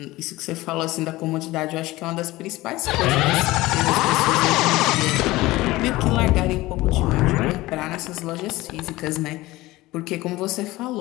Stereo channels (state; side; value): quieter; right; 18.9 dB